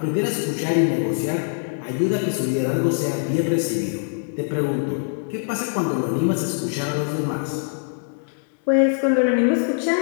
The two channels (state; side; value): silent; right; digital silence